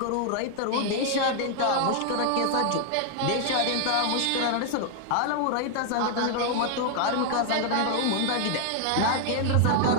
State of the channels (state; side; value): different; both; correlation 0.00